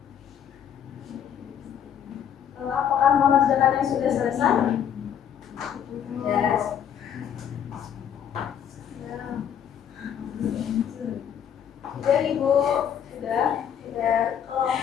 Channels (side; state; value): right; quieter; 8.9 dB